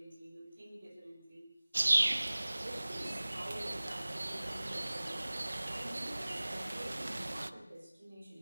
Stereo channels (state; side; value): inverted; both; correlation -0.99